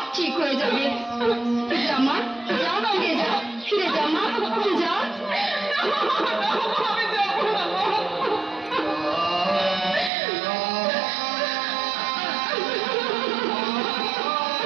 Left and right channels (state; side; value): drops out; left; at 10.1 s